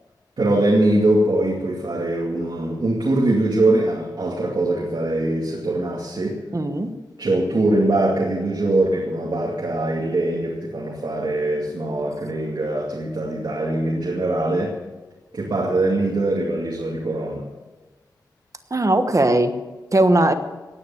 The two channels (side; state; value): both; normal; correlation 0.85